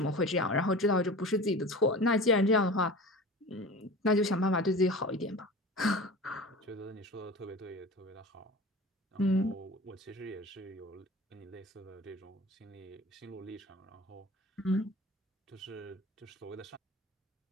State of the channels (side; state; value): both; normal; correlation 0.36